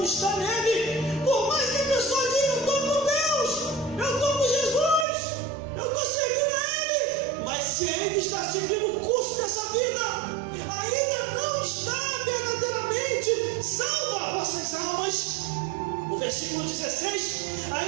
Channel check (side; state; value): left; drops out; at 5.1 s